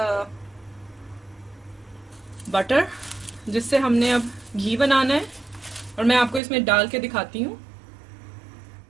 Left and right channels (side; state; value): left; drops out; at 6.4 s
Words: butter, जिससे हमने अब घी बनाना है। और मैं आपको इसमें डाल के दिखाती हूँ